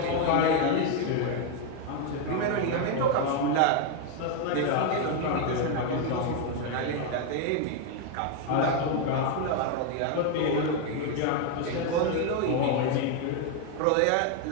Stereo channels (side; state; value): both; different; correlation 0.01